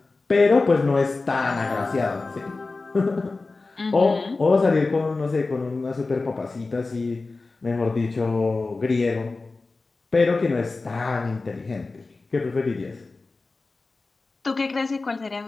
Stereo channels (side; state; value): right; quieter; 3.6 dB